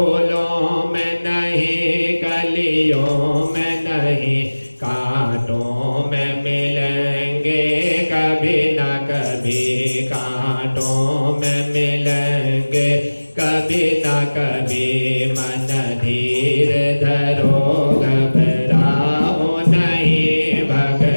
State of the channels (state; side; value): inverted; both; correlation -1.00